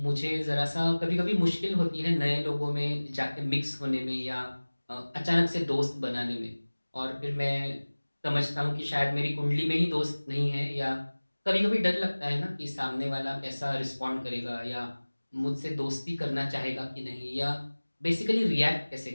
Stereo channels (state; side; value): inverted; both; correlation -1.00